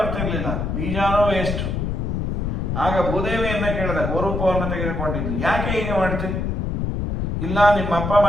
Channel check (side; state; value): left; noise; rumble, 1 dB below the sound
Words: ಬೀಜನೂ ವೇಸ್ಟ್. ಆಗ ಭೂದೇವಿಯನ್ನ ಕೇಳಿದ, ಗೋರೂಪವನ್ನು ತೆಗೆದುಕೊಂಡಿದ್ದು, ಯಾಕೆ ಹೀಗೆ ಮಾಡ್ತೀವಿ? ಇಲ್ಲ, ನಿಮ್ಮಪ್ಪ